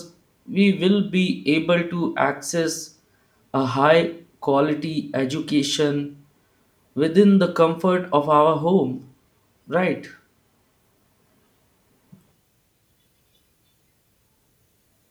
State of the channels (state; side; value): identical; both; correlation 1.00